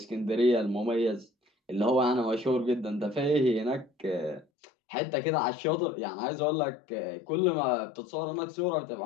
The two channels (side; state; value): right; drops out; at 4.5 s